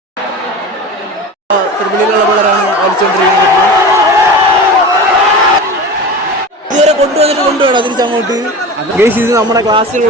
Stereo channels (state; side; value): normal; both; correlation 0.31